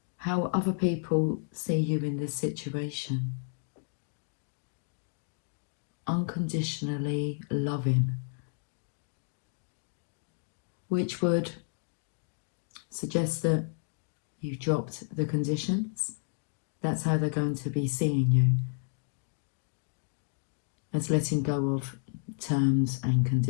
How other people see you in this situation. Unconditionally loving. Which would suggest that you dropped the conditions. That's how they're going to be seeing you. As letting go of terms and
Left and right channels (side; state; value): right; silent; digital silence